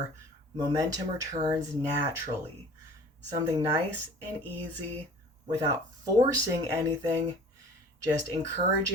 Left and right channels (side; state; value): both; normal; correlation 0.46